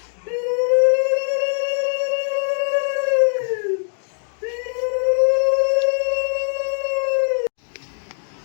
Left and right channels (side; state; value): right; silent; digital silence